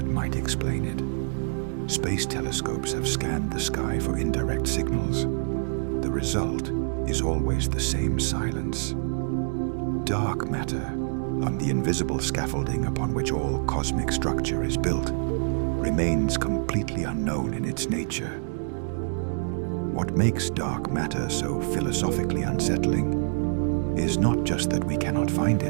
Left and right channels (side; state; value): left; silent; digital silence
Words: might explain it. Space telescopes have scanned the sky for indirect signals. The result is always the same silence. Dark matter, on the invisible scaffolding upon which all cosmic structure is built, remains completely unknown in its nature. What makes dark matter so philosophically unsettling is not just that we cannot find